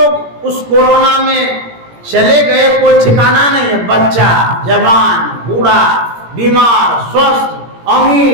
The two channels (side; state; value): left; late; 17 ms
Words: उस कोरोना में चले गए, कोई ठिकाना नहीं है। बच्चा, जवान, बूढ़ा, बीमार, स्वस्थ,